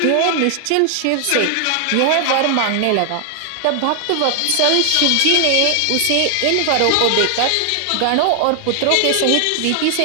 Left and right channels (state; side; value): different; both; correlation 0.00